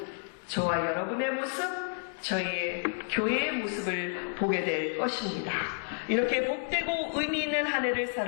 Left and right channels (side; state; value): right; silent; 57 dB below the other